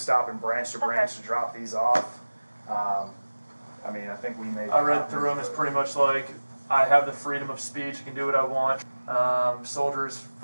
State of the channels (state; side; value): inverted; both; correlation -1.00